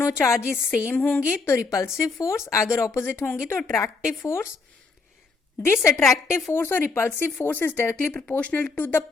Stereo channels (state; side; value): quieter; right; 4.2 dB